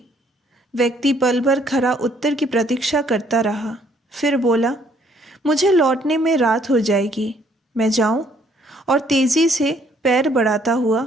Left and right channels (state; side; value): normal; both; correlation 0.65